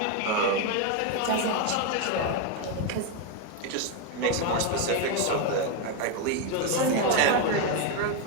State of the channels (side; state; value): both; different; correlation 0.02